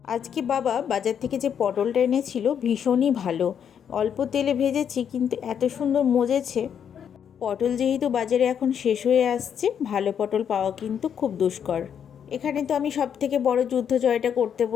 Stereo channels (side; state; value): right; quieter; 8.2 dB